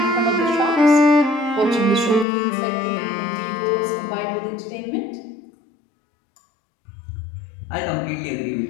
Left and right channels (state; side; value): drops out; right; at 2.2 s